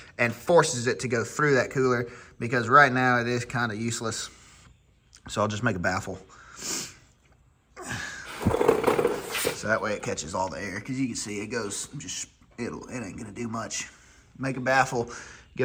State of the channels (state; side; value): identical; both; correlation 1.00